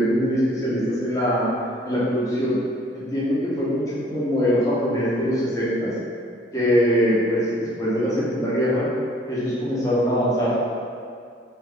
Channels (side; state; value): both; normal; correlation 0.57